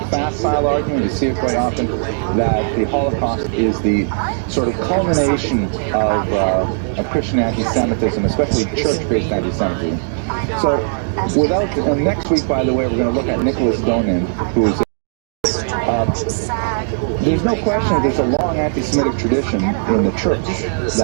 facile argument. You see it quite often, that the Holocaust is the sort of culmination of Christian anti-Semitism, especially church-based anti-Semitism. So and next week, by the way, we're going to look at Nicholas Donin, who's there's no question that there's a long anti-Semitic tradition in the church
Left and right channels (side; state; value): left; silent; digital silence